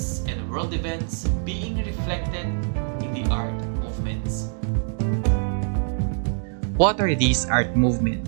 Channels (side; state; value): left; silent; digital silence